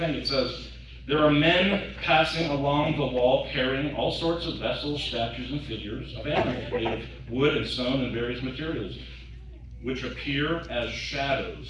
it says. There are men passing along the wall carrying all sorts of vessels, statues, and figures of animals made of wood and stone and various materials, which appear as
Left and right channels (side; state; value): both; identical; correlation 1.00